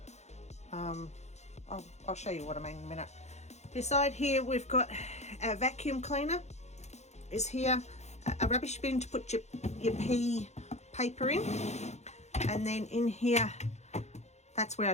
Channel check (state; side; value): late; right; 0.32 ms